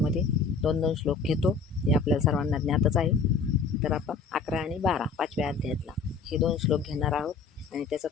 2-2 श्लोक घेतो. हे आपल्याला सर्वांना ज्ञातच आहे. तर आपण 11 आणि 12 5व्या अध्यायातला हे 2 श्लोक घेणार आहोत आणि त्याचा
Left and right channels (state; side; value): quieter; right; 4.9 dB